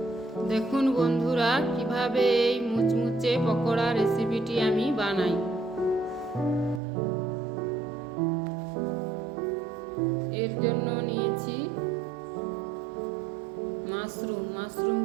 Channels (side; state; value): left; drops out; at 6.8 s